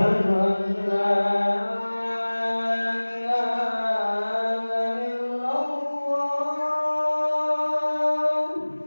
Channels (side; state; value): both; inverted; correlation -1.00